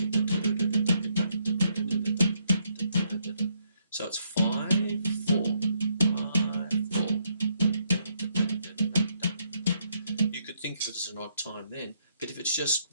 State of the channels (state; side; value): inverted; both; correlation -0.74